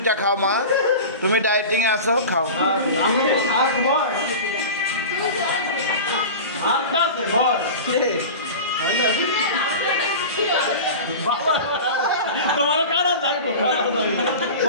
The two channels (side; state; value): both; inverted; correlation -0.31